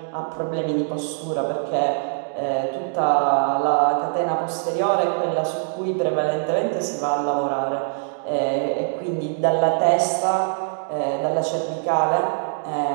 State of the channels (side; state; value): left; silent; digital silence